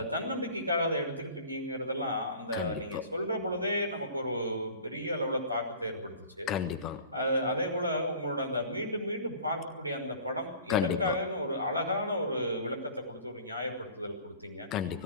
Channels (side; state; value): both; inverted; correlation -0.44